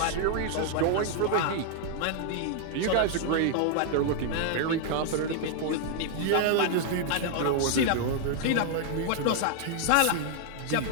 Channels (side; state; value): both; different; correlation 0.00